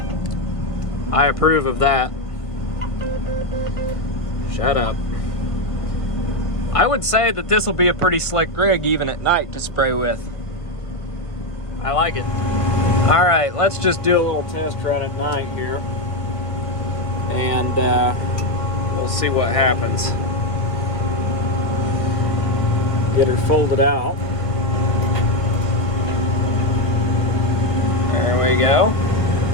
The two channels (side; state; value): right; late; 1.5 ms